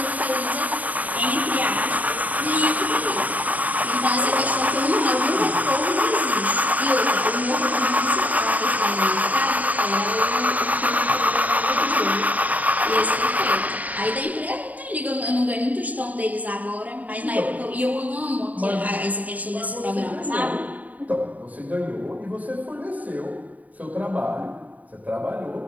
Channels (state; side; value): late; left; 0.074 ms